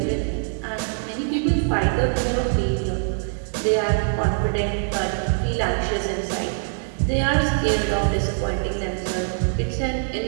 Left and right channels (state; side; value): silent; left; digital silence